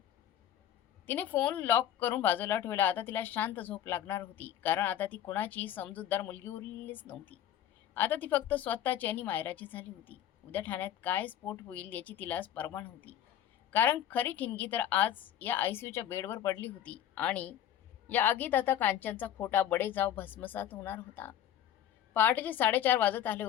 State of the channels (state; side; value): quieter; right; 10.8 dB